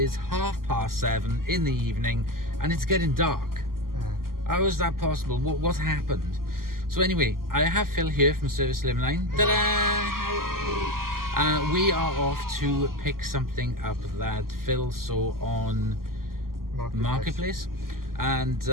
7:30 in the evening and it's getting dark. How is that possible? What happened? So anyway, I have Phil here from Servisslimline. Ta-da! We are off to pick something up that Phil saw on Marketplace. And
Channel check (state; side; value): late; left; 0.92 ms